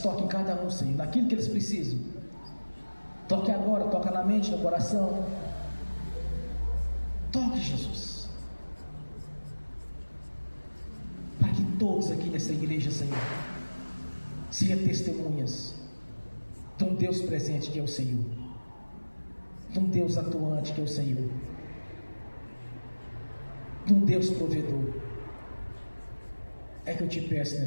toque em cada um, Senhor, naquilo que eles precisam. Toque agora, toca na mente, no coração. Toque, Jesus, para que todos aqui nessa igreja, Senhor, sejam testemunhas de um Deus presente que é o Senhor, de um Deus atuante que é o Senhor, de um Deus provedor. É que eu te peço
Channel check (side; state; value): both; inverted; correlation -1.00